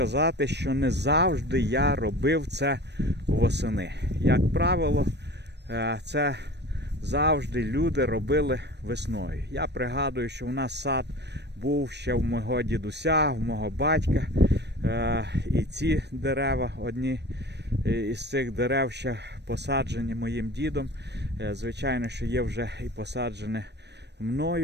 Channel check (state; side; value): late; left; 0.50 ms